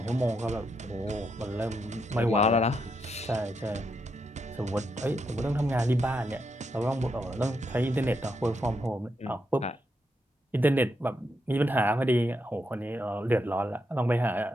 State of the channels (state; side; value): normal; both; correlation 0.81